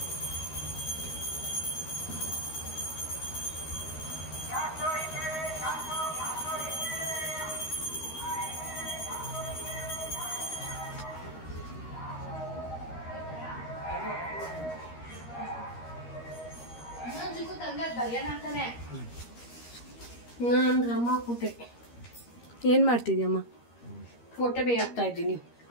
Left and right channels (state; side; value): late; right; 13 ms